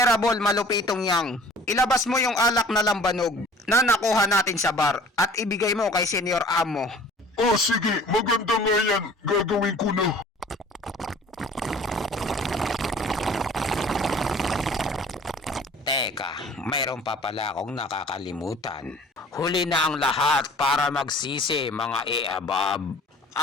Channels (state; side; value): normal; both; correlation 0.48